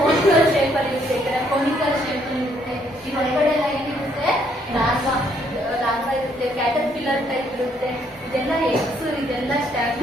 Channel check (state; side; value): normal; both; correlation 0.69